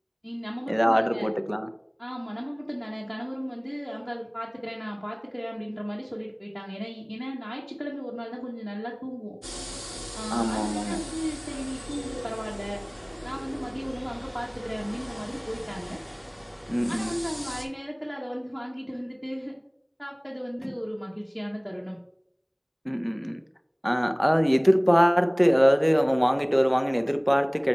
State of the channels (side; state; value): both; identical; correlation 1.00